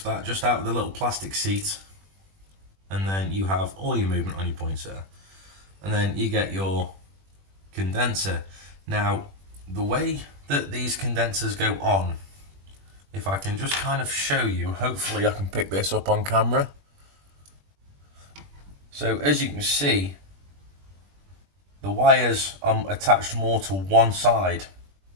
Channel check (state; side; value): late; left; 21 ms